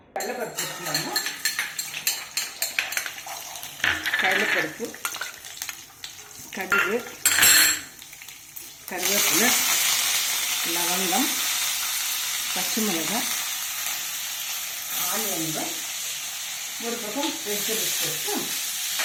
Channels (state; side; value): identical; both; correlation 1.00